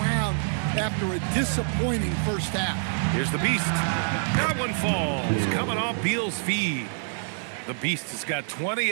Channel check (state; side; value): silent; left; 61 dB below the other